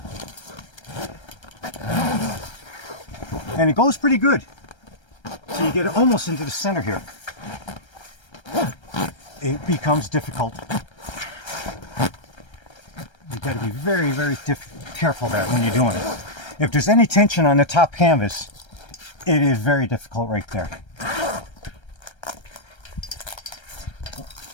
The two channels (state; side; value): late; right; 1.3 ms